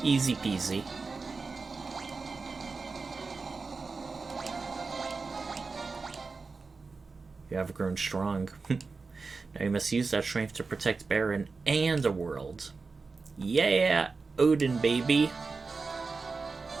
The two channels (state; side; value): quieter; left; 4.3 dB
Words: Easy peasy. You have grown strong. Now you must use that strength to protect Baron and the world. Yeah, Odin, baby.